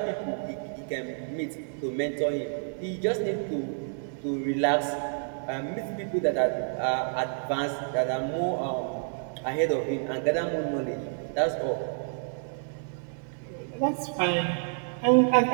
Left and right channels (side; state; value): left; silent; digital silence